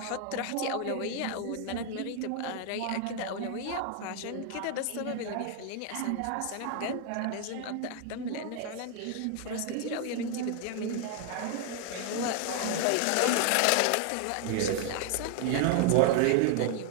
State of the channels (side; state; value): both; different; correlation 0.00